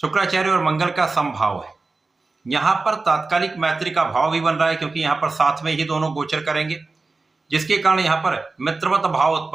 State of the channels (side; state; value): left; quieter; 3.7 dB